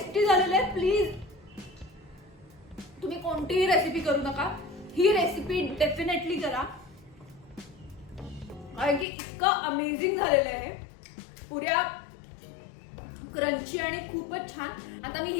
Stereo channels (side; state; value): right; drops out; at 9.1 s